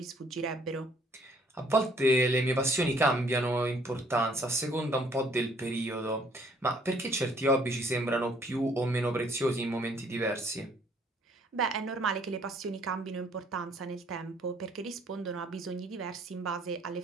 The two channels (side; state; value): both; normal; correlation 0.62